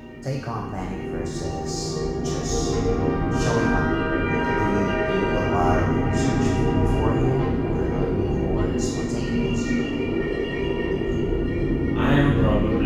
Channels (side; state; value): both; identical; correlation 1.00